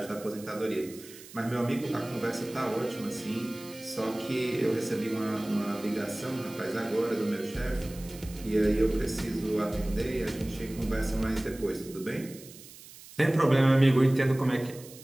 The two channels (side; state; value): right; noise; hiss, 18 dB below the sound